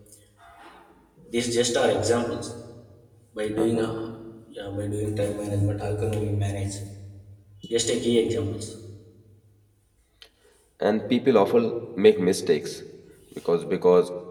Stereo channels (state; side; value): identical; both; correlation 1.00